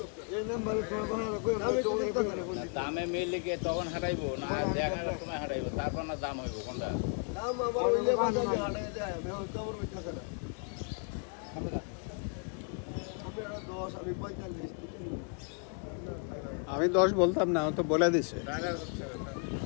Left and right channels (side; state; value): right; quieter; 39.4 dB